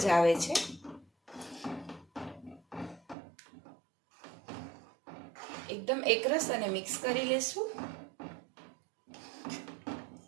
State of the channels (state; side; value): drops out; left; at 3.2 s